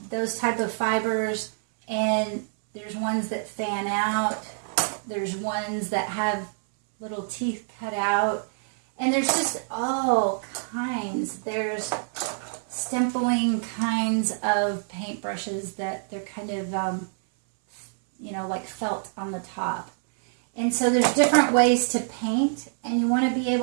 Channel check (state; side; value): silent; left; 61 dB below the other